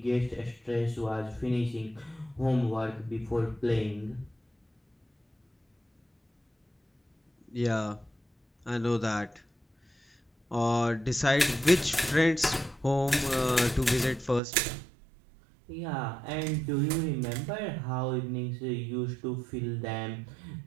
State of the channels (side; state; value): left; drops out; at 14.4 s